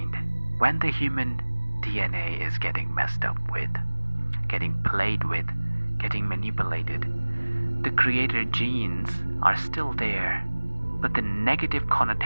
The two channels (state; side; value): inverted; both; correlation -1.00